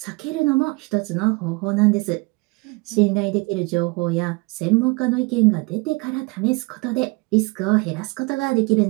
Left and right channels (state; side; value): quieter; left; 26.3 dB